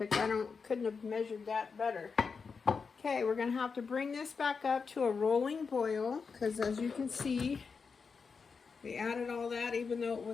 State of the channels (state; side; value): quieter; right; 5.3 dB